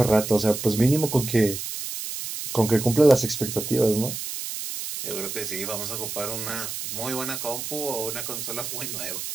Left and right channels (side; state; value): right; noise; hiss, 6 dB below the sound